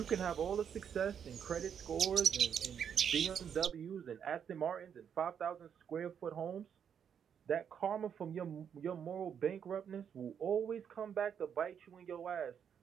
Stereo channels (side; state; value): left; quieter; 8.0 dB